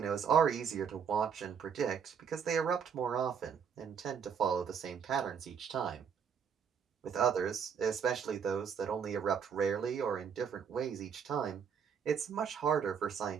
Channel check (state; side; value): quieter; left; 7.1 dB